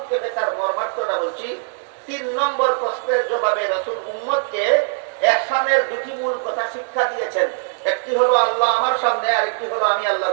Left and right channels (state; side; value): silent; left; digital silence